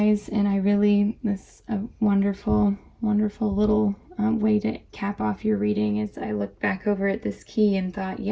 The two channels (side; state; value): both; identical; correlation 1.00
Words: and I really wonderful, wonderful little way to cap off your reading. As I looked back over at this key and thought,